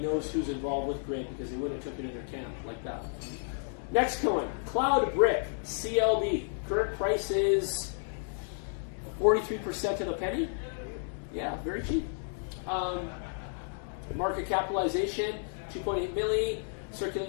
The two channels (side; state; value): right; silent; digital silence